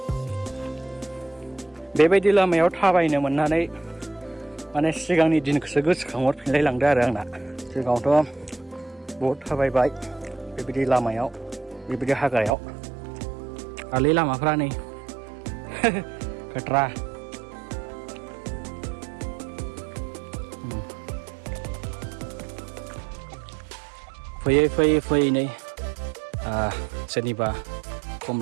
बेबायदि लामायाव थाबायनो मोननानै माने सिगांनि दिनखौसो गोसोखांहरफिनलाय लांदों आरो आंना। सिगाङावथ' बहुद थाबायबाय बेबायदि लामायाव, बेबायदि हाग्रायाव। आलै लामाफ्रा नै खोथ्रा। फैयै नै सोरनिबा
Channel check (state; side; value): drops out; left; at 12.6 s